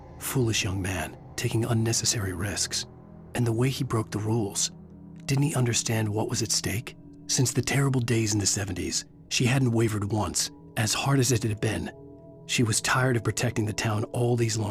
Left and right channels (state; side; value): identical; both; correlation 1.00